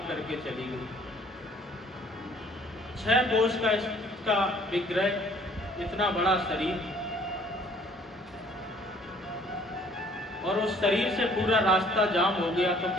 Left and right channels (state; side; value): normal; both; correlation 0.58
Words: करके चली गई। 6 कोष का इसका विग्रह, इतना बड़ा शरीर, और उस शरीर से पूरा रास्ता जाम हो गया, तो